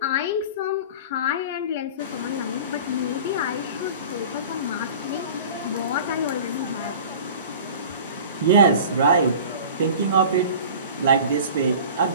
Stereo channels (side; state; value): both; inverted; correlation -0.40